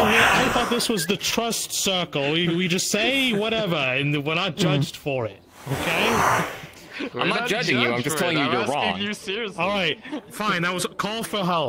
thought this was the trust circle. We just say whatever, and we're not judged for it. Okay? I'm not judging you, I'm just telling you you're wrong. You seriously. All right, fine. That was a call for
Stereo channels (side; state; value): both; identical; correlation 1.00